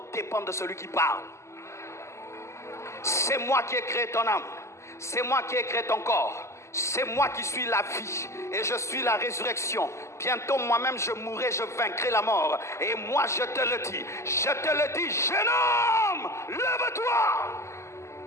dépend de celui qui parle. C'est moi qui ai créé ton âme. C'est moi qui ai créé ton corps. C'est moi qui suis la vie et je suis la résurrection. Bientôt moi-même je mourrai, je vaincrai la mort. Et moi je te le dis. Je te le dis, jeune homme, lève-toi.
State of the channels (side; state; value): right; late; 0.13 ms